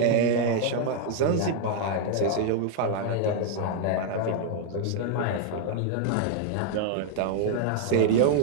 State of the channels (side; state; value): both; different; correlation 0.00